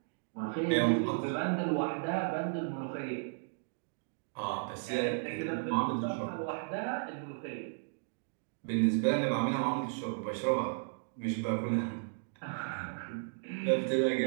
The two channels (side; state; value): left; silent; digital silence